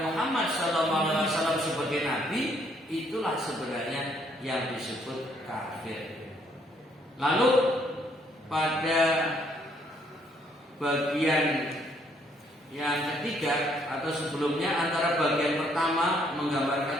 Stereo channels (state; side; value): normal; both; correlation 0.68